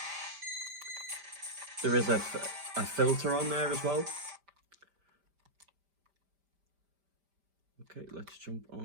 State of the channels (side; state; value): left; late; 5.1 ms